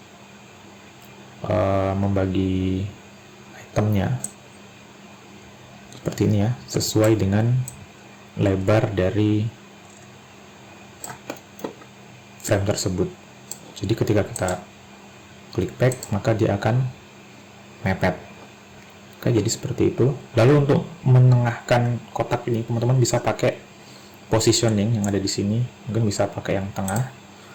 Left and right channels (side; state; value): both; identical; correlation 1.00